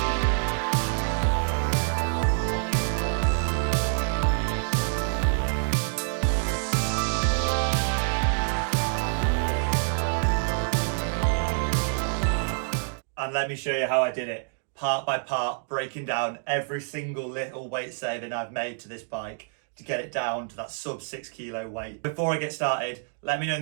And let me show you how I did it, part by part, breaking down every single little weight saving I've made to this bike to get it down to that sub 6 kilo weight. Before I get started, let me know in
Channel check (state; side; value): silent; left; digital silence